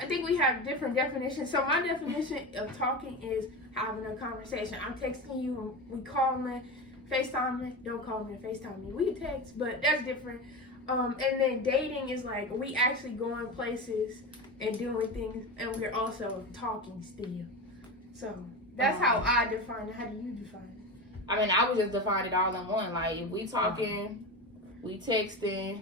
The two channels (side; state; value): both; normal; correlation 0.23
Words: think we have different definitions. So my definition of talking is having a conversation. I'm texting you, we calling, FaceTiming. Don't call me and FaceTime me. We can text, but that's different. And then dating is like, we actually going places and doing things, and we're also talking still. So that's how I define it. How do you define it? I mean, I would just define it all in one. Like, if we talking, we